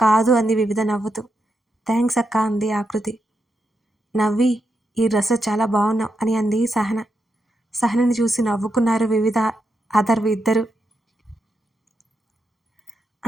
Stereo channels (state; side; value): normal; both; correlation 0.84